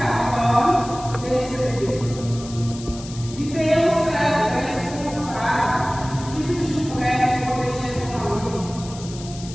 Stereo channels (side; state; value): left; noise; hiss, 15 dB below the sound